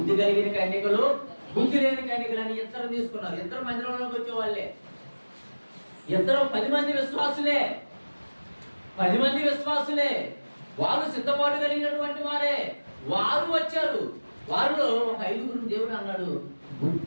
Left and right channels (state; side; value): inverted; both; correlation -1.00